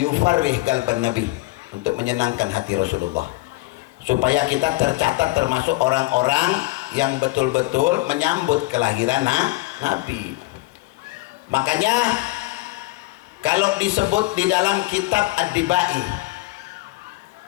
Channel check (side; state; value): right; quieter; 21.2 dB